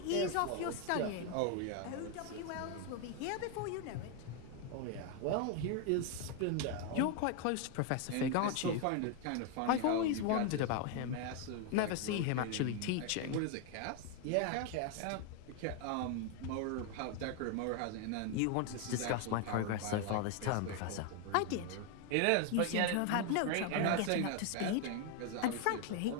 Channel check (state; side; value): different; both; correlation 0.01